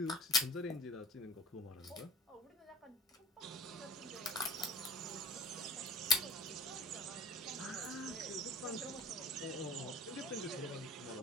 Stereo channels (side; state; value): both; normal; correlation 0.43